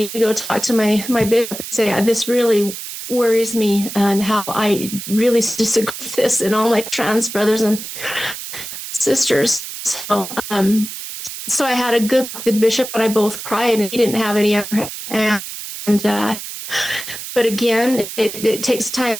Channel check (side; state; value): right; noise; hiss, 9 dB below the sound